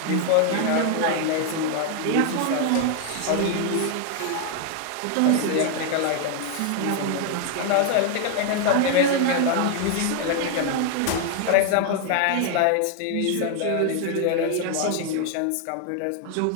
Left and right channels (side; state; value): both; different; correlation 0.00